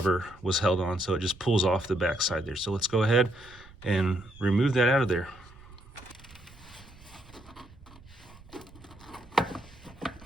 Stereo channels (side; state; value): right; noise; rumble, 22 dB below the sound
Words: was held on. So it just pulls off the back side there. So let's go ahead and remove that out of there.